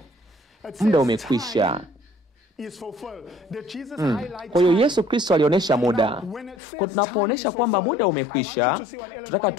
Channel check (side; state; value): right; drops out; at 6.6 s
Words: muda umekwisha. Kwa hiyo Yesu Kristo alionyesha muda. Kwa tunapoonesha kwamba muda umekwisha, tunataka